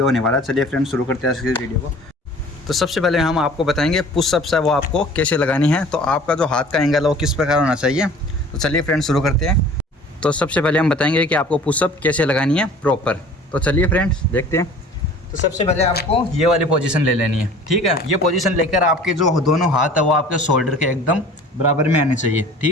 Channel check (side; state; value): both; normal; correlation 0.47